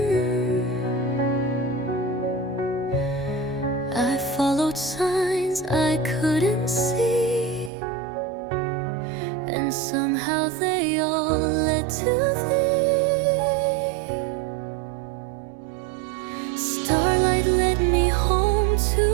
I followed signs I couldn't see, and somehow they all led to thee. Starlight led me home to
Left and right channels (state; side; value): drops out; left; at 7.7 s